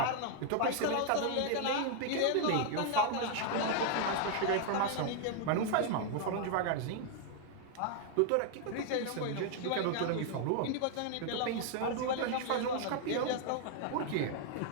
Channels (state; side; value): different; both; correlation 0.00